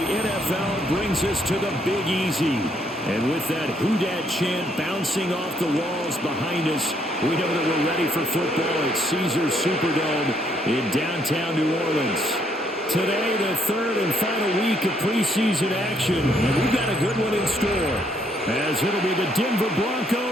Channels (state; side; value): normal; both; correlation 0.70